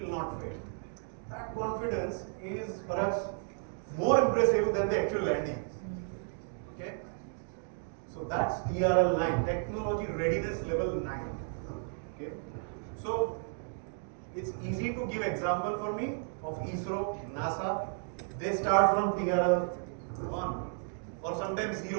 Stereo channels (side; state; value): left; silent; 56 dB below the other